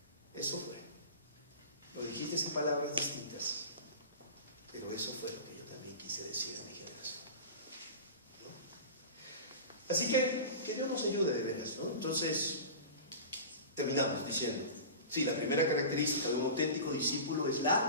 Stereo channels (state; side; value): inverted; both; correlation -0.32